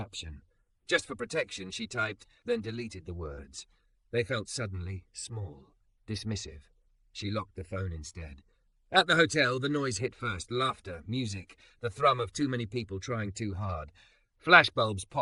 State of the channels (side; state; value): both; identical; correlation 1.00